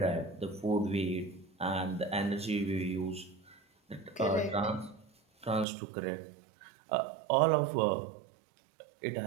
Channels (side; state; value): left; drops out; at 5.7 s